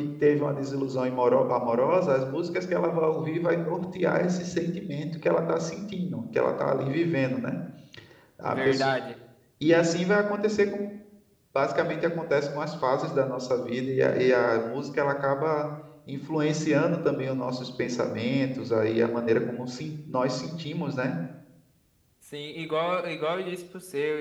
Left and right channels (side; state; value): both; identical; correlation 1.00